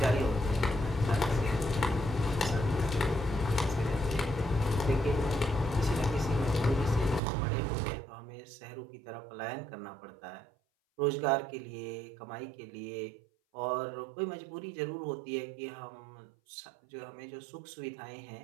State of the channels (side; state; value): left; drops out; at 7.2 s